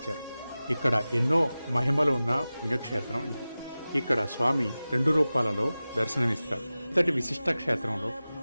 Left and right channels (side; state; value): both; inverted; correlation -0.96